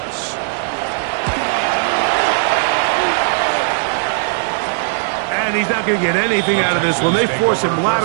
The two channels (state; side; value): silent; left; digital silence